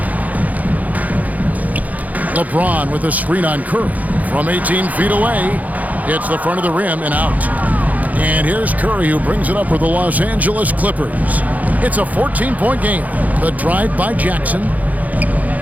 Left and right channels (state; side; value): late; left; 0.077 ms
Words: LeBron with a screen on Curry. From 18 feet away, hits the front of the rim and out. And here's Curry who brings it up for the Los Angeles Clippers. It's a 14-point game. The drive by Jackson.